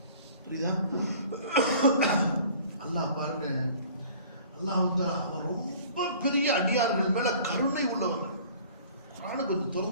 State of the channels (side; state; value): both; inverted; correlation -0.49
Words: புரியுதா? அல்லாஹ் பாருங்க, அல்லாஹ் வந்து அவன் ரொம்ப பெரிய அடியார்கள் மேல கருணை உள்ளவர்கள். குர்ஆனை கொஞ்சம்